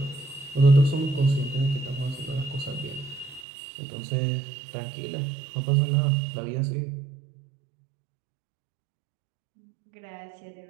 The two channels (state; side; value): drops out; left; at 3.5 s